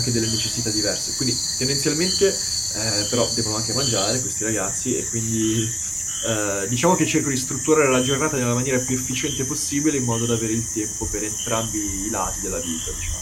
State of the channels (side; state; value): both; identical; correlation 1.00